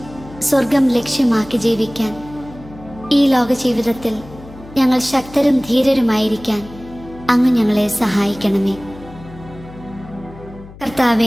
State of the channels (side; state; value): left; noise; hum, 18 dB below the sound